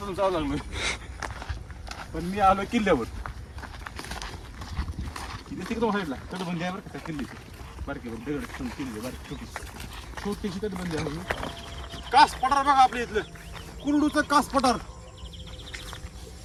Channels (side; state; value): both; identical; correlation 1.00